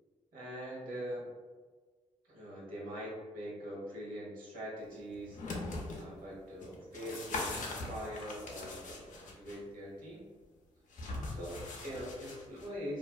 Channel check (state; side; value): normal; both; correlation 0.55